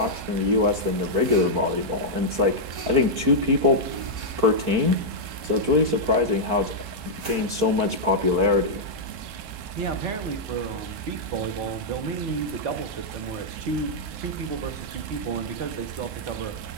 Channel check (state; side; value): late; left; 4.5 ms